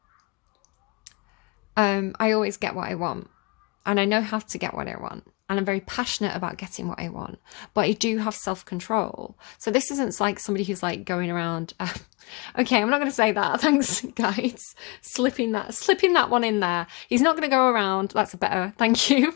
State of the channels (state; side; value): quieter; right; 27.8 dB